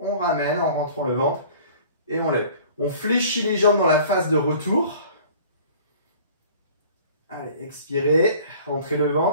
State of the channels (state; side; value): inverted; both; correlation -0.48